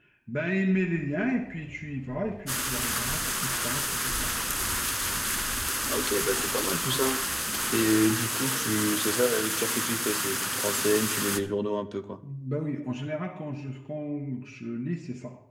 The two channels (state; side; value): identical; both; correlation 1.00